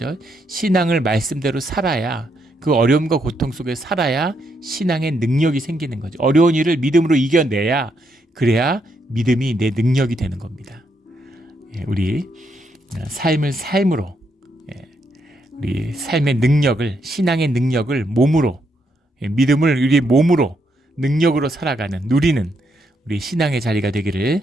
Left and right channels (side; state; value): both; normal; correlation 0.78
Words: 신앙을 말씀대로 살아야 그 어려움과 고통 속에 살아야 신앙의 능력이 생기는 거죠. 어려운 일을 믿음으로 이겨내야, 그래야 믿음이 내 능력이 되는 겁니다. 우리 삶을 삶으로, 우리 삶의 능력을, 신앙의 능력을 몸으로, 믿음을 우리 몸으로, 능력으로 살아가는, 누리는 우리 신앙의 자리가 되기를